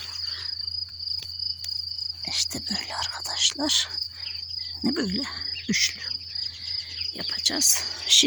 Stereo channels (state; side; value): identical; both; correlation 1.00